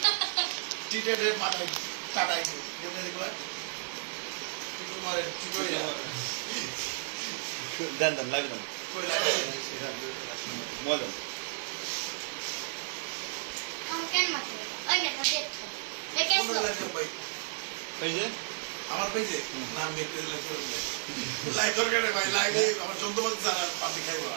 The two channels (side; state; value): left; silent; digital silence